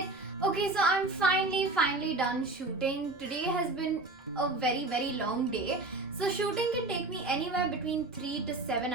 Okay, so I'm finally done shooting. Today has been a very long day. So shooting can take me anywhere between 3 to 7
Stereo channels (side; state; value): left; quieter; 3.0 dB